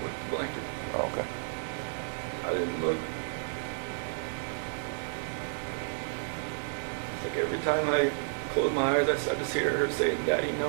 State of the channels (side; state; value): left; silent; 57 dB below the other